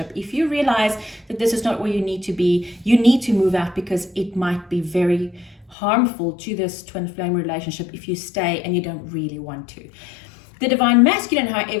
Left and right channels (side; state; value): right; drops out; at 5.8 s